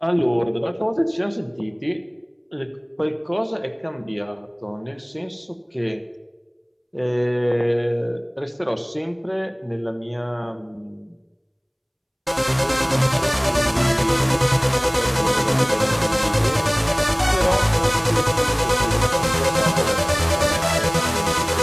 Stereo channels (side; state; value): both; identical; correlation 1.00